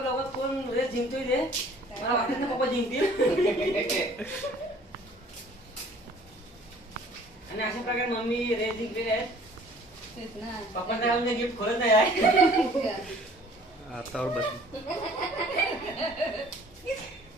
कोण रेस जिंकतोय ते. मला वाटत ना पप्पा जिंकतील. आणि अशा प्रकारे मम्मी रेस जिंकलेली आहे. तेच ना. पप्पांना म्हणजे गिफ्ट खोलत नाही आहे. हातावर बस.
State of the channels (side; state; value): both; normal; correlation 0.53